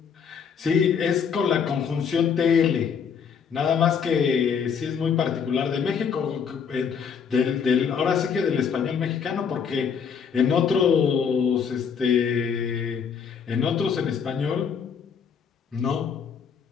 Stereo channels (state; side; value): quieter; right; 6.8 dB